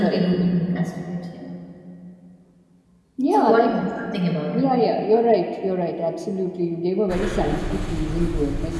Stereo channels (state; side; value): identical; both; correlation 1.00